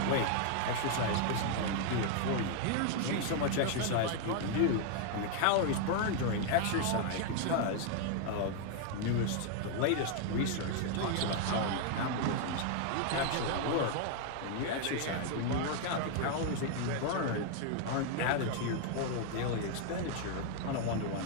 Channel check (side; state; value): both; different; correlation 0.00